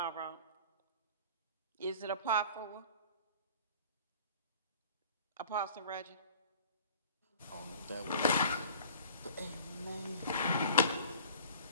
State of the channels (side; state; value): both; inverted; correlation -0.46